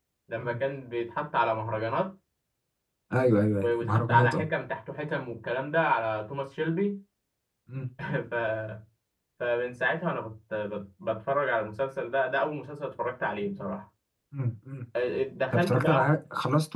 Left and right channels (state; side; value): identical; both; correlation 1.00